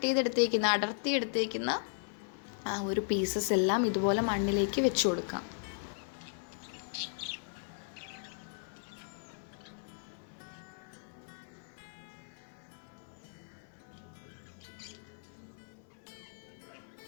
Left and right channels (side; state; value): right; silent; 53 dB below the other